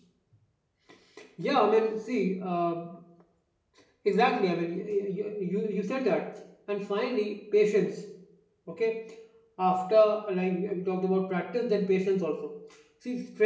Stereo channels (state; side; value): identical; both; correlation 1.00